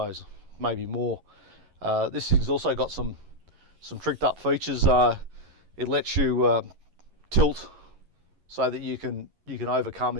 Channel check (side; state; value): left; late; 11 ms